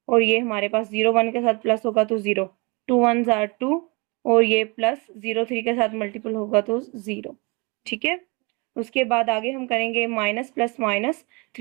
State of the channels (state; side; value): quieter; left; 28.8 dB